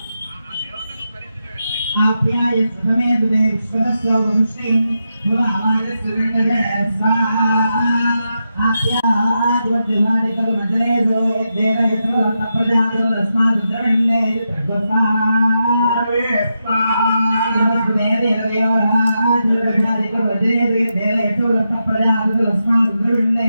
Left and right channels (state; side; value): inverted; both; correlation -0.86